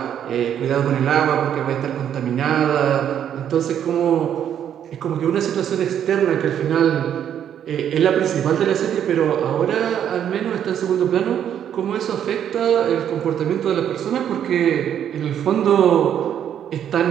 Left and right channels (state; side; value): quieter; left; 9.5 dB